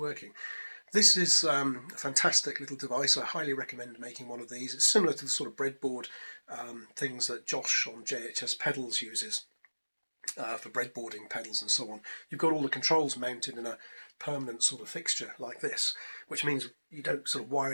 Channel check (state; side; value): inverted; both; correlation -1.00